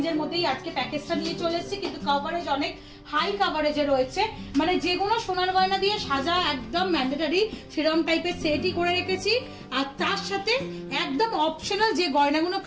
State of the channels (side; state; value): both; identical; correlation 1.00